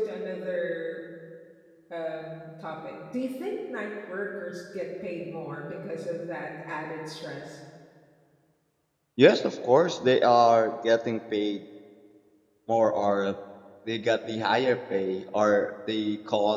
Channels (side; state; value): both; identical; correlation 1.00